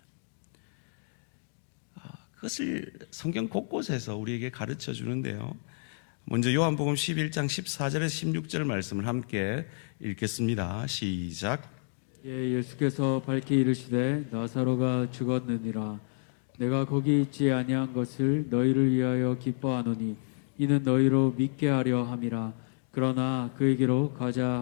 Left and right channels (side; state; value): right; silent; digital silence